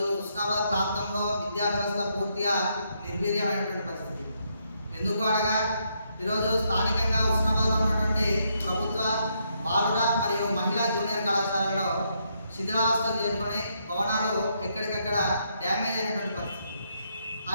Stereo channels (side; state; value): both; inverted; correlation -0.76